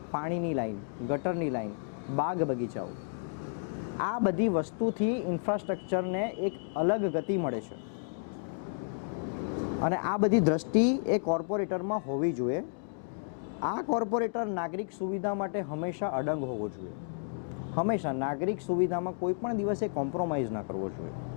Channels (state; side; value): silent; right; digital silence